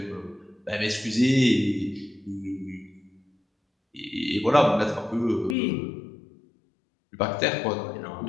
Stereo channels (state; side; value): drops out; right; at 5.6 s